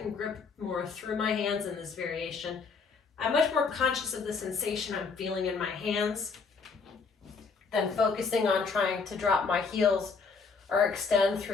grip more through my hands in this variation. I'm much more conscious of the sensation I'm feeling in my hands than focusing on trying to drop my heels or extend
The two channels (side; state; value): right; quieter; 5.0 dB